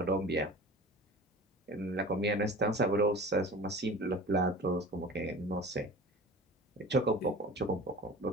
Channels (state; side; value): normal; both; correlation 0.38